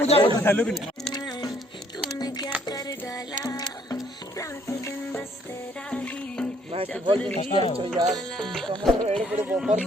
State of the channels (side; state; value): both; normal; correlation 0.64